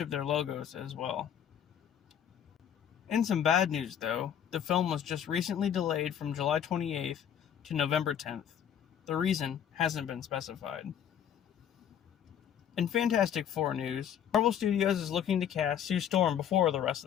their logos as well. In some bad news though, the film was just recently delayed from July 28th to November 10th. The reason hasn't been specified. In Fantastic Four news, Marvel Studios is looking to cast Sue Storm before the rest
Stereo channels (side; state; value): right; quieter; 9.2 dB